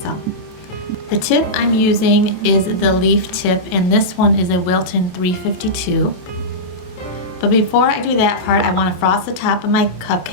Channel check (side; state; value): right; late; 28 ms